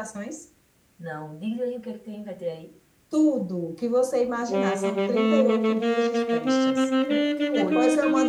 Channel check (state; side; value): identical; both; correlation 1.00